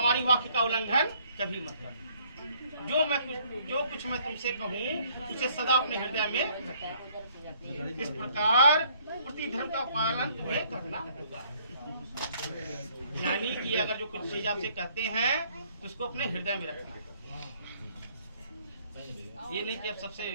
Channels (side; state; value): both; inverted; correlation -0.63